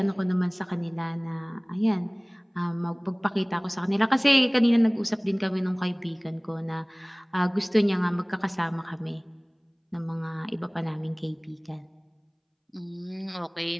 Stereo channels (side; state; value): both; identical; correlation 1.00